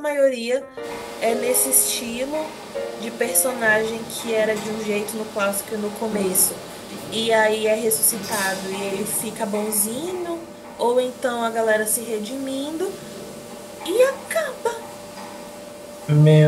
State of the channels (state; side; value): identical; both; correlation 1.00